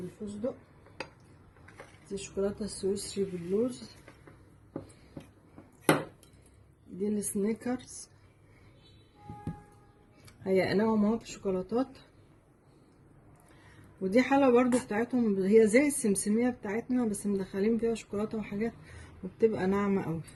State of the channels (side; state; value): both; identical; correlation 1.00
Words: دي شوكولاتة السويسري باللوز، دي السنيكرز هيقناهم اهو بشوكولاتات، ودي حلوة برضو بتاعتهم هي زي السمسمية بتاعتنا بس مدخلين فيها شوكولاتة وحاجات وبتبقى ناعمة قوي.